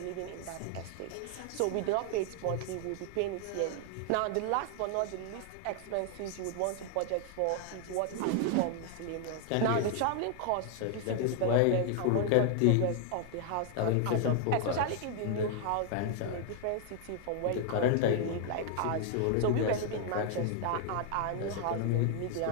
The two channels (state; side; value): different; both; correlation 0.00